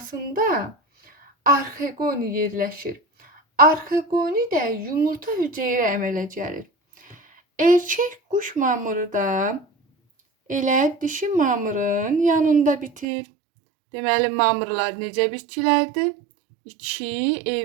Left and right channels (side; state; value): left; drops out; at 13.1 s